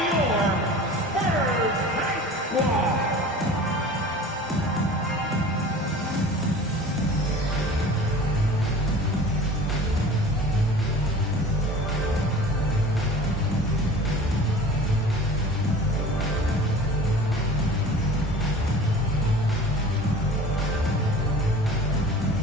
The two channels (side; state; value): both; normal; correlation 0.41